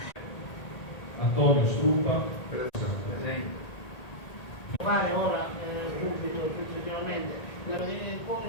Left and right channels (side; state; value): right; late; 1.8 ms